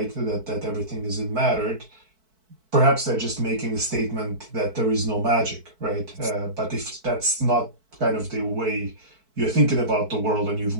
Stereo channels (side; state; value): left; late; 4.6 ms